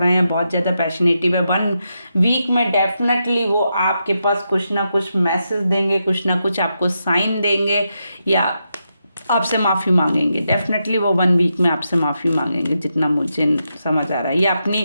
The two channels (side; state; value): both; inverted; correlation -0.85